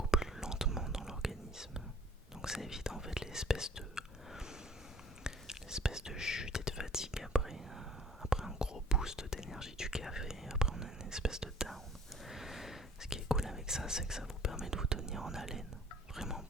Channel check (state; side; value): normal; both; correlation 0.51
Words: plus lentement dans l'organisme. Donc ça évite en fait l'espèce de chute et de fatigue après un gros boost d'énergie du café. Après on a une espèce de down. Ce qui est cool avec ça, c'est que ça vous permet de vous tenir en haleine vraiment